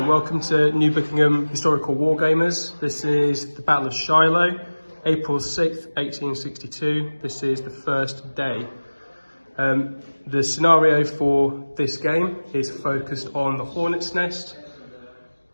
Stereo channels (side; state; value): both; inverted; correlation -1.00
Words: Welcome to New Buckenham Historical Wargamers. This is the Battle of Shiloh, April 6th, 1862. This is the first day. The scenario for this game is focused on the Hornet's Nest,